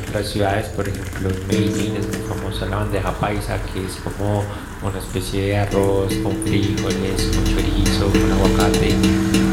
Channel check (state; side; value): identical; both; correlation 1.00